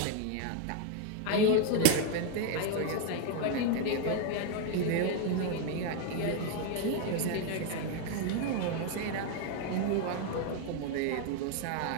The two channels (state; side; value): different; both; correlation 0.01